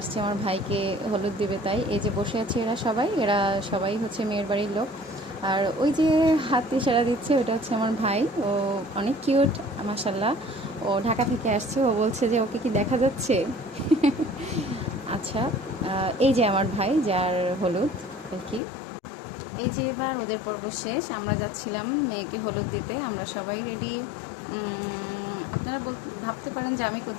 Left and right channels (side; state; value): right; drops out; at 18.6 s